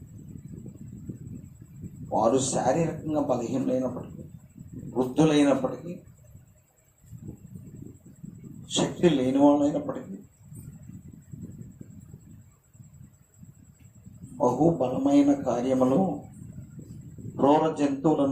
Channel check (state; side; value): identical; both; correlation 1.00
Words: వారు శారీరకంగా బలహీనమైనప్పటికీ, వృద్ధులైనప్పటికీ, శక్తి లేని వాళ్ళైనప్పటికీ బహుబలమైన కార్యములు, క్రూర